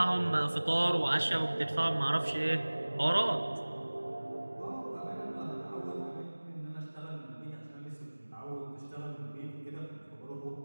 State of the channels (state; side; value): inverted; both; correlation -1.00